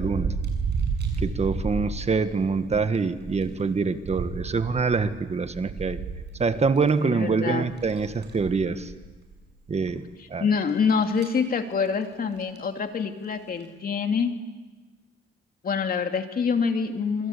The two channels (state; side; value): normal; both; correlation 0.58